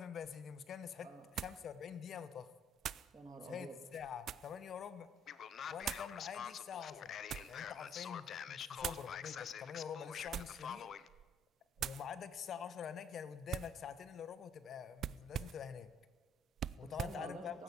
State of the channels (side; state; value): both; normal; correlation 0.63